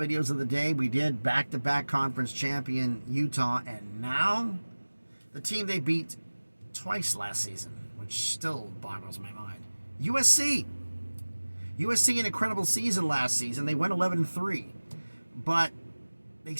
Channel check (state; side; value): inverted; both; correlation -1.00